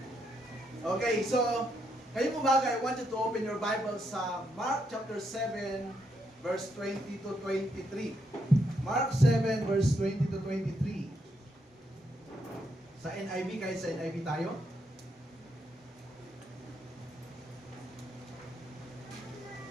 Okay, so ngayong umaga, I want you to open your Bible sa Mark chapter 7, verse 20 to 23. Mark 7, verse 20 to 23. Sa NIV, kahit sa NIV tayo.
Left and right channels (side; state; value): both; normal; correlation 0.78